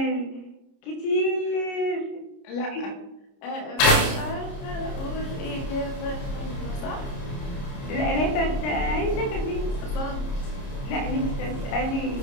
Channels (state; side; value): late; right; 30 ms